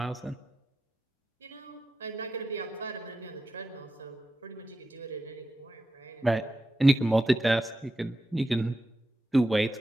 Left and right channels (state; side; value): normal; both; correlation 0.90